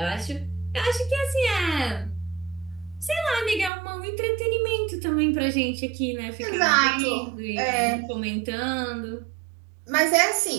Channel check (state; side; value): drops out; left; at 3.7 s